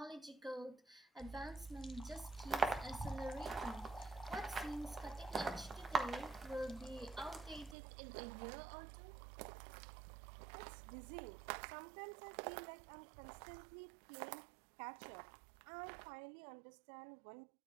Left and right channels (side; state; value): left; drops out; at 7.8 s